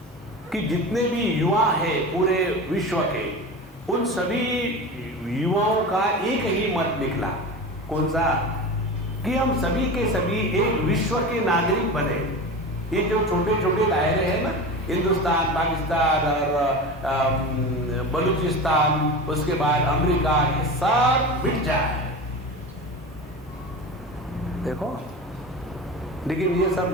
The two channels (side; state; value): both; normal; correlation 0.29